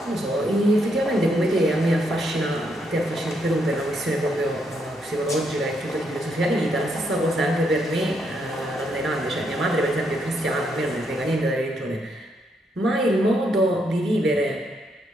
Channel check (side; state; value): both; normal; correlation 0.76